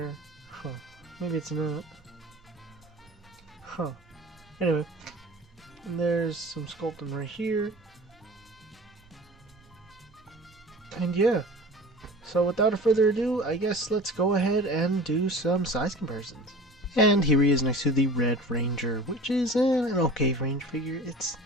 Huh. Maybe it's not. Huh. Anyway. And there's some sculpting right here. And yeah. So without further ado, I guess let's go ahead and do some size comparisons. And here he is next to the Red Ranger, which is an okay range figure. It's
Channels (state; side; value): normal; both; correlation 0.40